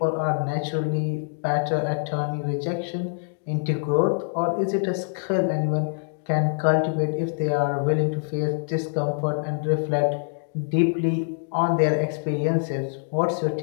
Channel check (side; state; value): right; silent; digital silence